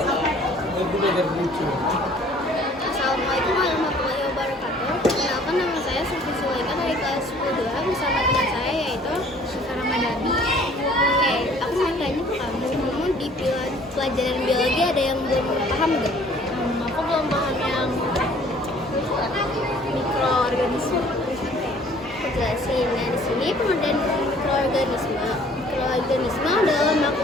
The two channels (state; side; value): normal; both; correlation 0.55